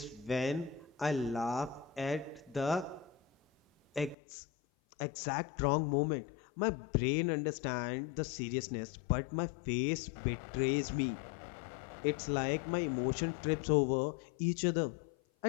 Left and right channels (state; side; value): drops out; right; at 4.2 s